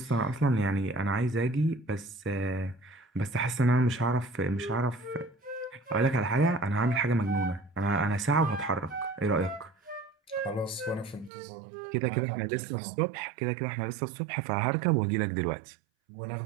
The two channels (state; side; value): drops out; left; at 11.3 s